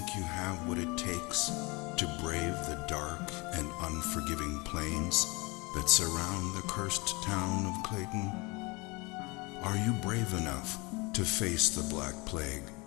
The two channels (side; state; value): right; quieter; 26.3 dB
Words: you have what it takes to brave the dark and unforgiving plains that surround the cursed town of Platin? Are you brave enough to face the Black Plague